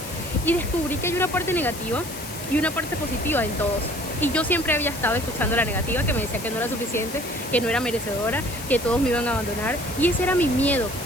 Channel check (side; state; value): left; noise; hiss, 11 dB below the sound